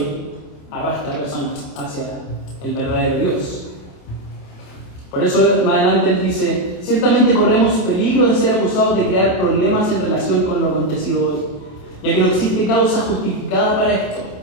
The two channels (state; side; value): late; right; 27 ms